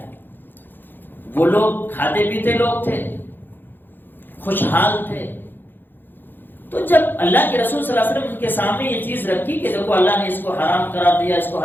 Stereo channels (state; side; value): late; right; 0.094 ms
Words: وہ لوگ کھاتے پیتے لوگ تھے، خوشحال تھے. تو جب اللہ کے رسول صلی اللہ علیہ وسلم کے سامنے یہ چیز رکھی کہ دیکھو اللہ نے اس کو حرام قرار دیا، اس کو